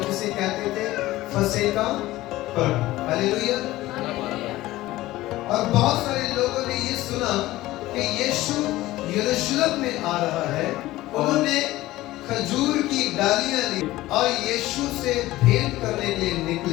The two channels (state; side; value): quieter; right; 17.0 dB